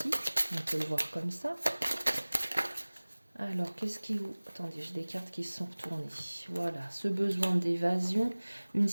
On peut le voir comme ça. Alors, qu'est-ce qui vous... Attendez, j'ai des cartes qui se sont retournées. Voilà, ce besoin d'évasion, une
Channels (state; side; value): inverted; both; correlation -1.00